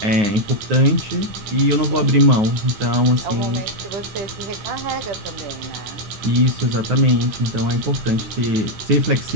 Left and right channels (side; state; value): left; late; 9.5 ms